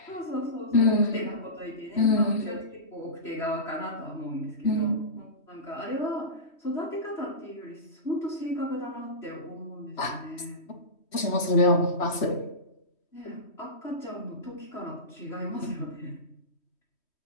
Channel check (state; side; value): late; right; 3.1 ms